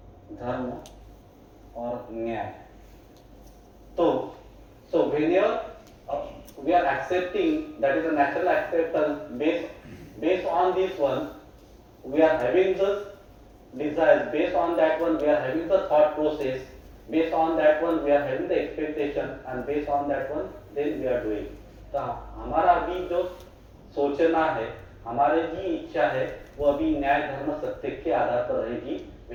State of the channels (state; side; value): identical; both; correlation 1.00